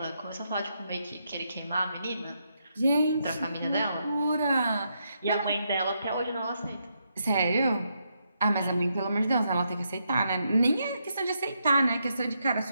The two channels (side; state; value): both; inverted; correlation -0.80